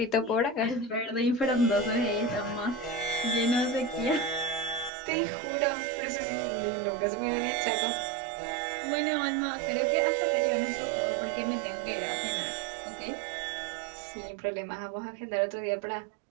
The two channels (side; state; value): left; drops out; at 4.9 s